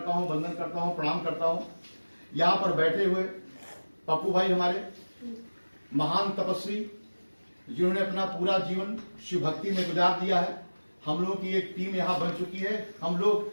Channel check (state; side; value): inverted; both; correlation -1.00